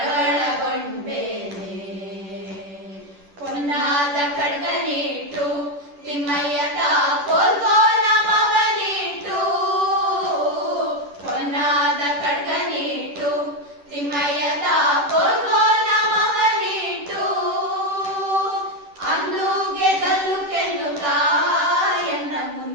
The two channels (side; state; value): left; late; 10 ms